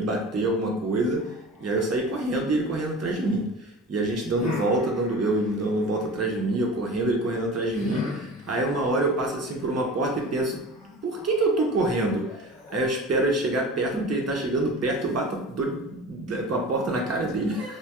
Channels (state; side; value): normal; both; correlation 0.36